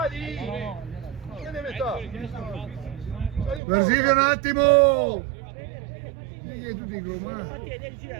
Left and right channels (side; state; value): left; drops out; at 3.6 s